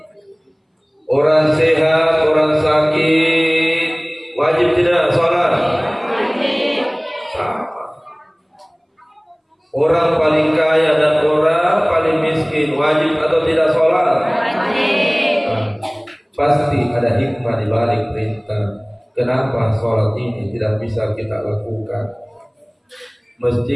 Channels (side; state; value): both; identical; correlation 1.00